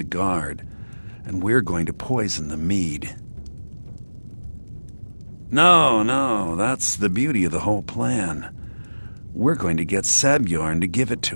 Guard, and we're going to poison the mead. No, that's the beauty of the whole plan. We're going to get Sabjorn to give it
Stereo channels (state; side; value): inverted; both; correlation -1.00